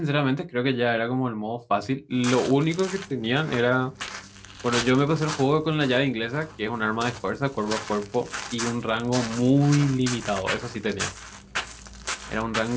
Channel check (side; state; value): both; identical; correlation 1.00